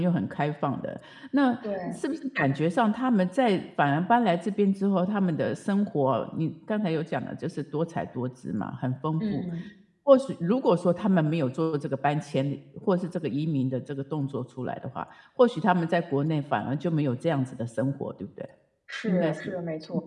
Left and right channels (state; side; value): identical; both; correlation 1.00